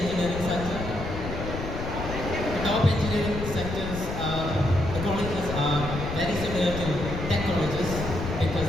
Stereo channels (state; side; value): noise; left; rumble, 6 dB below the sound